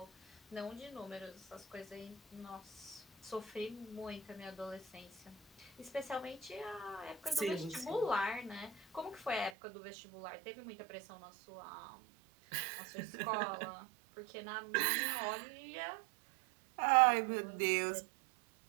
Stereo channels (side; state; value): left; drops out; at 9.5 s